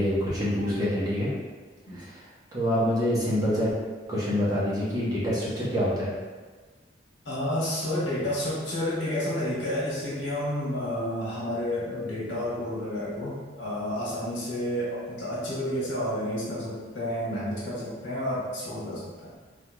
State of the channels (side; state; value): both; normal; correlation 0.52